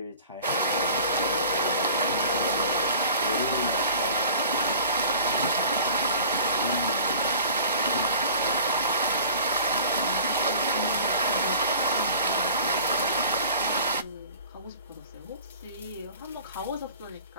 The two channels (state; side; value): inverted; both; correlation -0.44